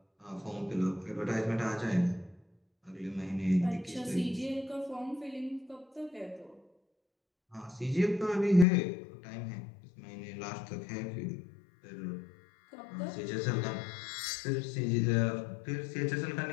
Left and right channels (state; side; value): drops out; right; at 8.7 s